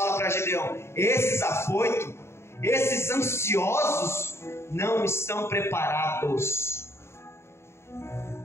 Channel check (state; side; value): late; right; 0.13 ms